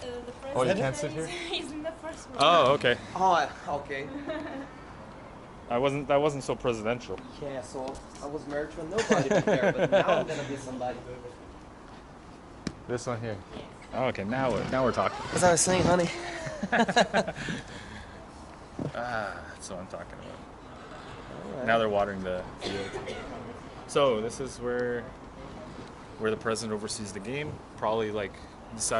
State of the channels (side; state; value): both; identical; correlation 1.00